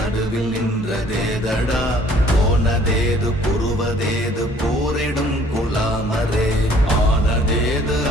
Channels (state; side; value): normal; both; correlation 0.57